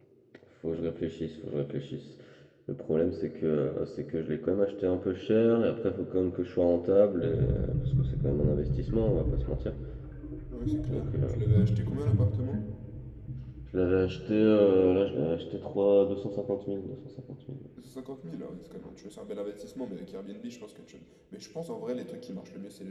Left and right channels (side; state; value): both; identical; correlation 1.00